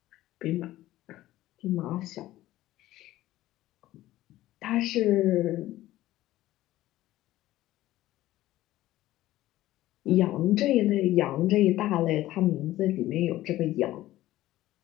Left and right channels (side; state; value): right; quieter; 15.5 dB